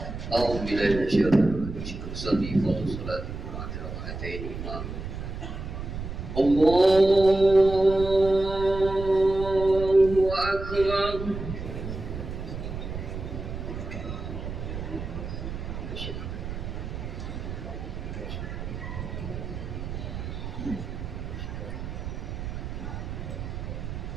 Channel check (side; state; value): right; noise; rumble, 7 dB below the sound